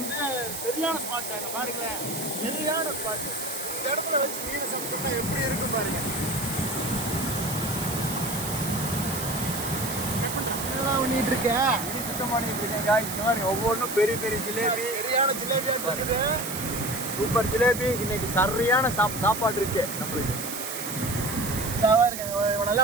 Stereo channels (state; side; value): noise; right; hiss, 7 dB below the sound